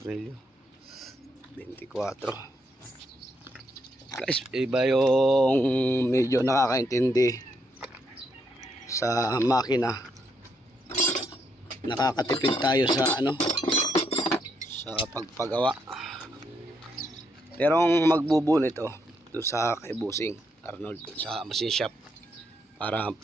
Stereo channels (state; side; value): normal; both; correlation 0.77